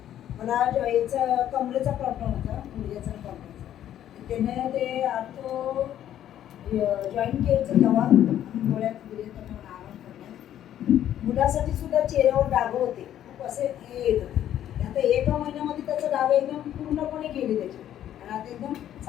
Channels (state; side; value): quieter; right; 11.3 dB